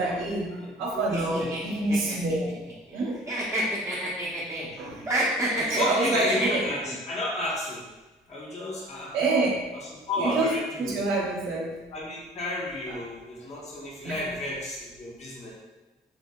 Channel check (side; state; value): both; normal; correlation 0.45